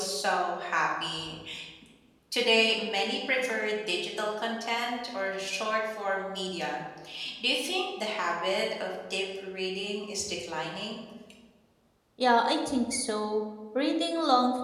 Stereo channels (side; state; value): both; identical; correlation 1.00